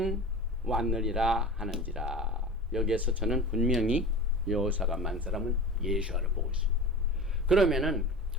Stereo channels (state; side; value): normal; both; correlation 0.33